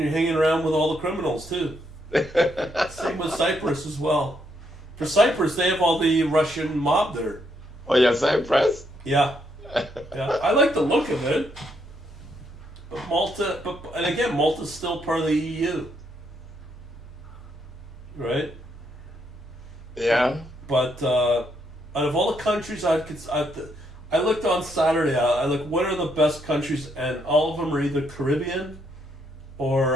hanging around with all the criminals too. Same with Cyprus as well. For Cyprus, they have all the Russian mob there. Oh, yeah, Cyprus? Yeah, I like the look of it. But Malta, and again, Malta's still part of the EU, right? Yeah. But out of all the countries I looked on Saturday. I looked what are the best countries, and all of them are either Caribbean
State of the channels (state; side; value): normal; both; correlation 0.75